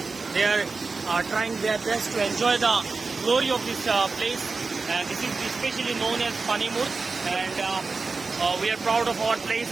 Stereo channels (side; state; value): left; quieter; 4.2 dB